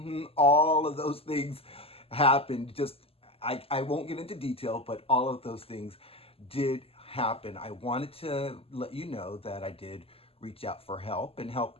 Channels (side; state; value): right; late; 0.28 ms